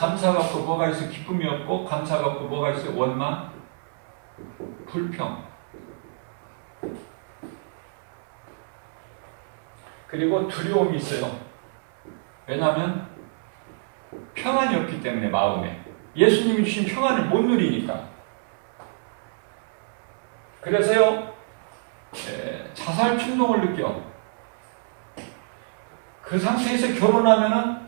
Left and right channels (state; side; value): silent; left; 61 dB below the other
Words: 없고 뭐가 있어? 기쁨이 없고, 감사가 없고 뭐가 있어? 원망, 불평. 그리고 두려움이 있어요. 왜냐하면 평안이 없기 때문에, 마음에. 예수님이 주신 평안을 못 누리니까. 그래서요, 자살 충동을 느껴. 그 상태에서 결혼하면은